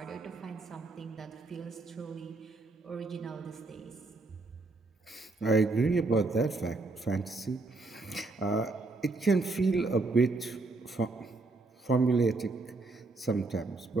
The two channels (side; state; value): left; quieter; 3.5 dB